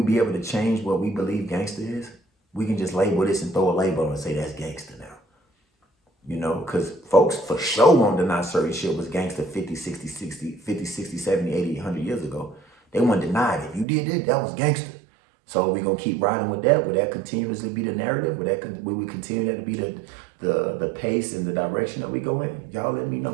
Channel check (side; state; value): left; drops out; at 13.9 s